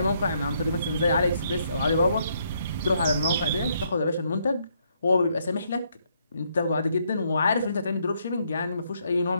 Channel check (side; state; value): both; inverted; correlation -0.73